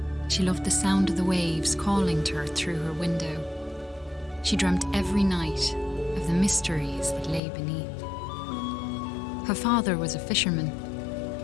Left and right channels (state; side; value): drops out; right; at 7.4 s